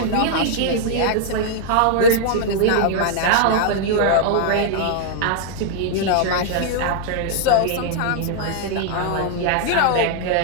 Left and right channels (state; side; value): different; both; correlation -0.01